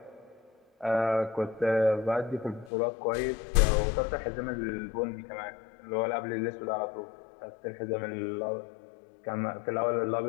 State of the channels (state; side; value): drops out; right; at 2.7 s